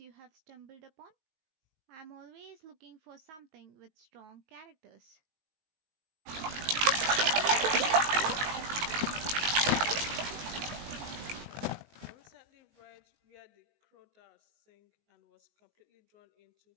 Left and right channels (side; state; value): left; late; 19 ms